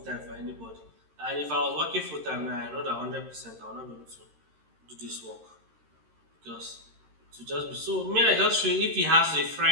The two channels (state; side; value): late; left; 13 ms